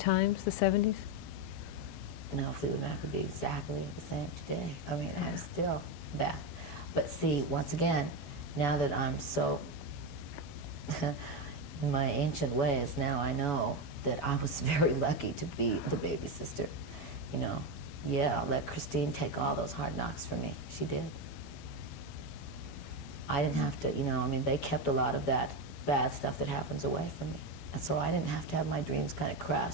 the 70s? No, Fleetwood Mac would be exactly the same today. I mean, I'm still that. But see, once again, now that I'm so in my ancient ways, now I know that I was very lucky to be the baby sister. You know, yeah, let Christine take all those hard knocks from me. She did. I didn't have to, you know, I mean, they kept a lot of that bad stuff that happens away from me. And so I didn't have to have my dreams kind of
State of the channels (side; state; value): right; late; 12 ms